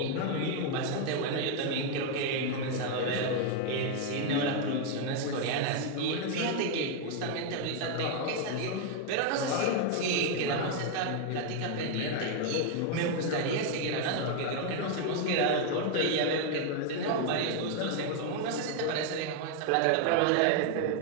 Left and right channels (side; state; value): both; different; correlation 0.01